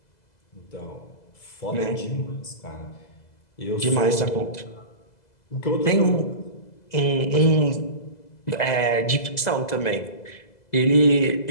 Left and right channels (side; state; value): right; late; 2.0 ms